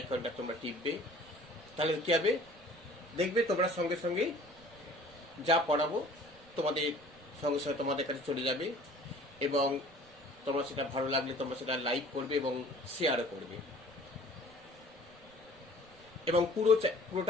তোমরা টিপবে। তাহলে কী হবে, দেখবে তোমরা সঙ্গে সঙ্গে যা পড়াবো তোমাদের সঙ্গে সঙ্গে তোমাদের কাছে চলে যাবে এবং তোমরা সেটা ভালো লাগলে তোমরা সেটা লাইক করবে এবং শেয়ারও করবে এবং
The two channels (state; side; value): noise; right; rumble, 26 dB below the sound